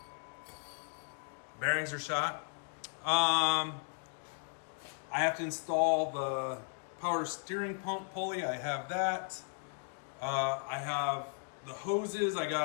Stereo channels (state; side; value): silent; right; 54 dB below the other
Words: Bearings are shot. I have to install the power steering pump pulley. I have that. I have the hoses. I got